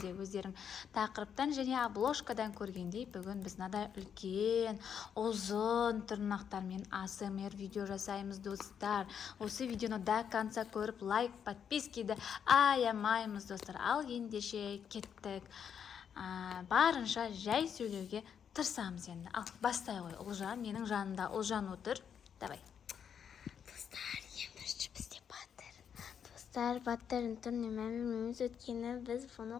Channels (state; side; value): quieter; right; 7.9 dB